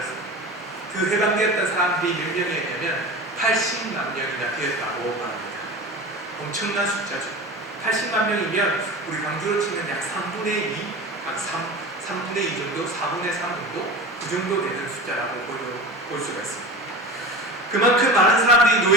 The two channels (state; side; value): normal; both; correlation 0.31